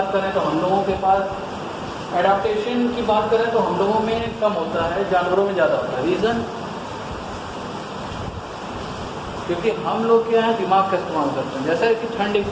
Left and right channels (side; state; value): both; identical; correlation 1.00